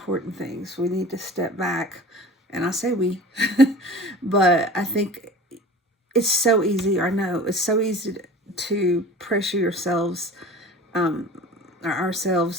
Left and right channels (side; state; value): both; normal; correlation 0.40